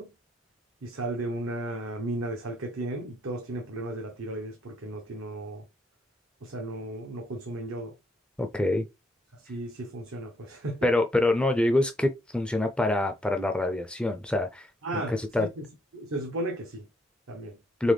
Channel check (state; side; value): normal; both; correlation 0.72